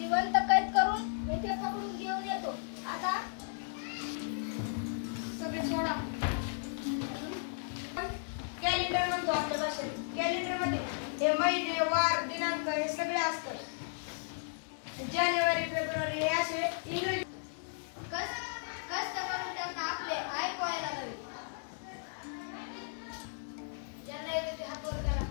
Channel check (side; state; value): right; silent; digital silence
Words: कैद करून येथे पकडून घेऊन येतो. आता सगळे सोडा. कॅलेंडर म्हणतो आपल्या भाषेत. कॅलेंडर मध्ये हे महिने वार दिनांक हे सगळे असतात. जानेवारी फेब्रुवारी हे असे इंग्रजी. कष्ट करून त्यांना आपले आई पोहायला लागले. ज्यांना येते ते हात वर करा.